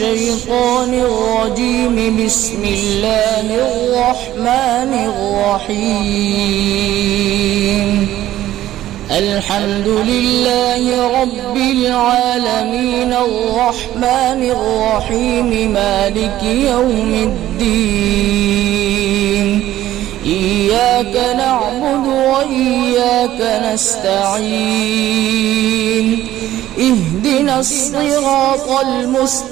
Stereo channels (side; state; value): left; quieter; 13.7 dB